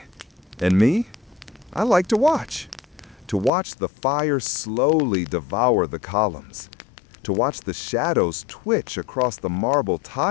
And me? I like to watch. To watch the fire slowly devour the columns. To watch the shadows twitch across the marble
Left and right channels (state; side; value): drops out; right; at 3.5 s